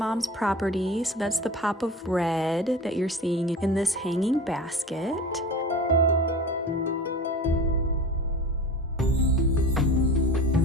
property. So that's the pop of red that you're seeing in this hanging basket.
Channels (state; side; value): normal; both; correlation 0.35